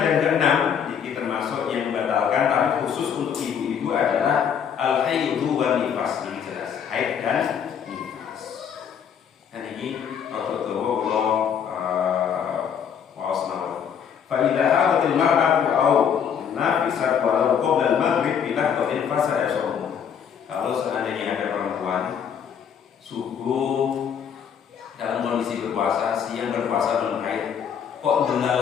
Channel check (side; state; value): right; quieter; 7.9 dB